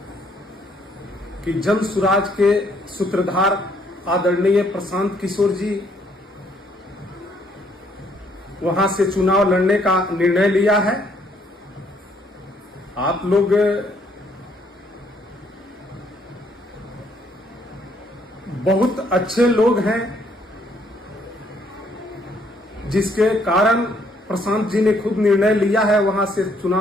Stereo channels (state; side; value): normal; both; correlation 0.67